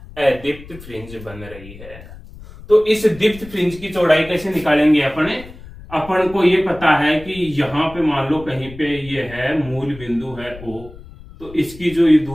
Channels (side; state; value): left; noise; rumble, 17 dB below the sound